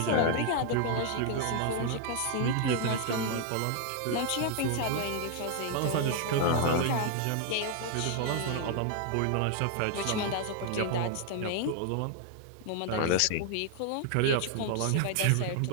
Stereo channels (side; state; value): both; different; correlation 0.00